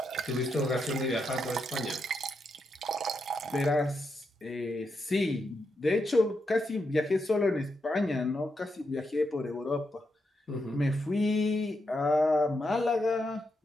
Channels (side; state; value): both; normal; correlation 0.83